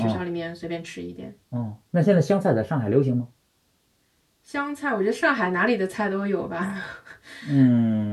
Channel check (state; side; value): identical; both; correlation 1.00